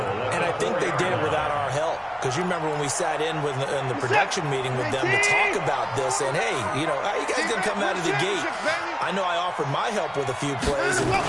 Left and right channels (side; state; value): both; identical; correlation 1.00